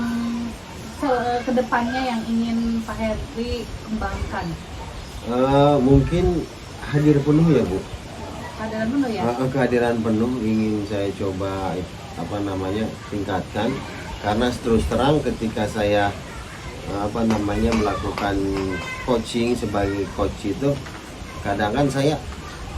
kedepannya yang ingin Pak Heri kembangkan? Mungkin hadir penuh ya Bu. Kehadiran penuh ya? Kehadiran penuh ingin saya coba tingkatkan, karena terus terang ketika saya melakukan coaching sebagai coach itu kadang kan saya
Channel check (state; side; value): identical; both; correlation 1.00